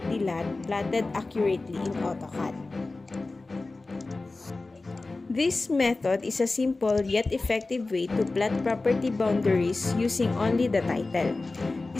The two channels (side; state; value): right; quieter; 3.4 dB